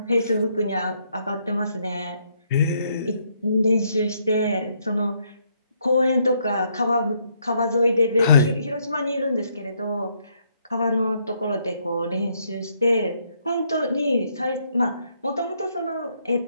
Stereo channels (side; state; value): both; inverted; correlation -0.73